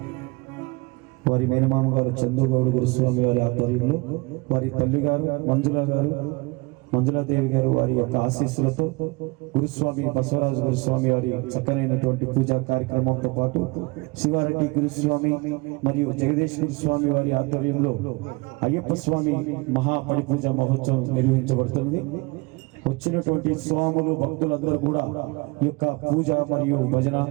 వారి మేనమామ గారు చందు గౌడ్ గురుస్వామి వారి ఆధ్వర్యంలో వారి తల్లి గారు మంజులాదేవి గారు వారి యొక్క ఆశీస్సులతో గురుస్వామి బసవరాజు గురుస్వామి వారి చక్కనైనటువంటి పూజా కార్యక్రమంతో పాటు శివారెడ్డి గురుస్వామి మరియు జగదీష్ గురుస్వామి వారి ఆధ్వర్యంలో అయ్యప్ప స్వామి మహాపడి పూజ మహోత్సవం నిర్వహించబడుతుంది. వచ్చినటువంటి స్వాములు భక్తులందరూ కూడా ఈ యొక్క పూజ మరియు భజన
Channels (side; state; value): left; quieter; 26.5 dB